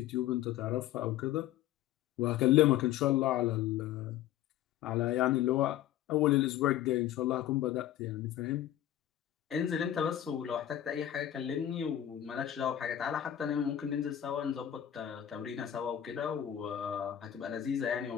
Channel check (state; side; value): quieter; right; 11.8 dB